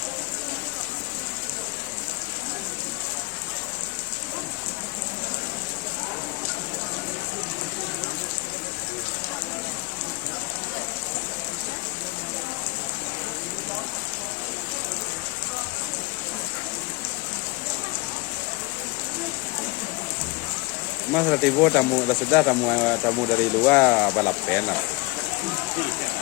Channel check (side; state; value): right; quieter; 25.1 dB